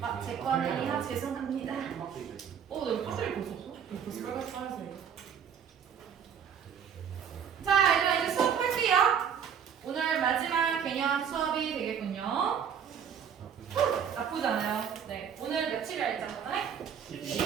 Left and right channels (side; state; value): left; quieter; 7.8 dB